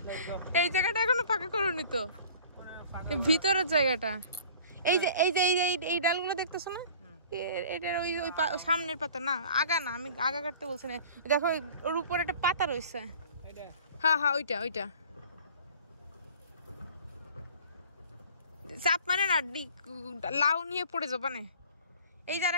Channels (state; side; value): inverted; both; correlation -0.46